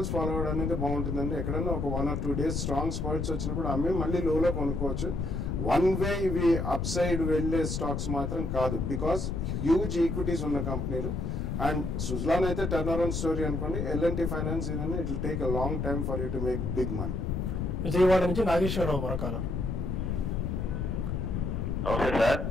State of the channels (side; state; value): left; noise; rumble, 1 dB below the sound